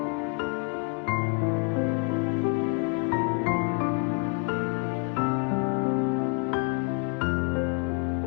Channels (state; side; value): quieter; right; 33.8 dB